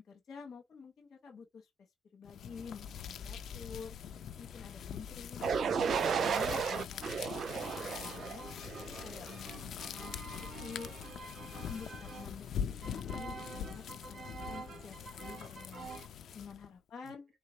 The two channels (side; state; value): both; normal; correlation 0.67